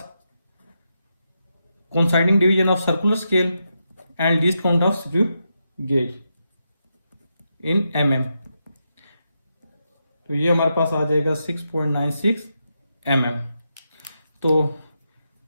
coinciding division of circular scale and least count of screw gauge in mm, तो ये हमारे पास आ जाएगा 6.96 mm। तो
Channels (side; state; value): both; inverted; correlation -0.85